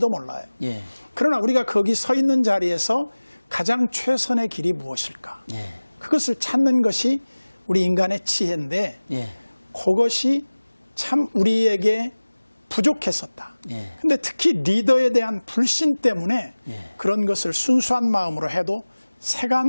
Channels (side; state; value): both; inverted; correlation -1.00